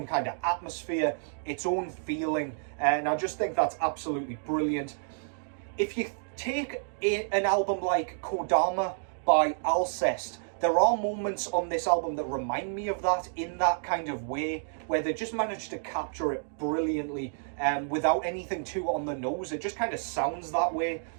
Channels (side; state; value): left; silent; digital silence